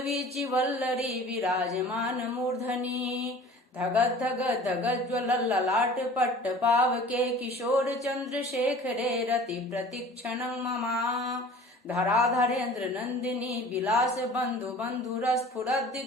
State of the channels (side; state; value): both; normal; correlation 0.44